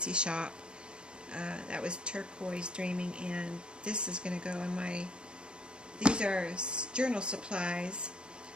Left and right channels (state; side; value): late; left; 0.052 ms